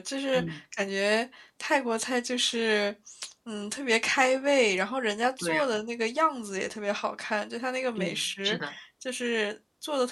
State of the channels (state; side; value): identical; both; correlation 1.00